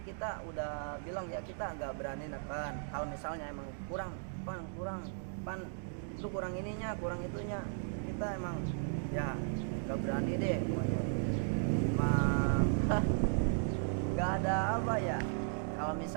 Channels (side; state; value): left; silent; digital silence